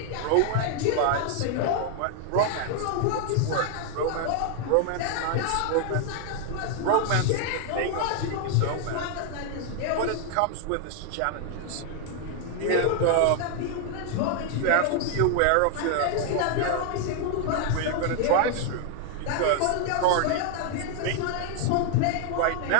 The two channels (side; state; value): both; different; correlation 0.00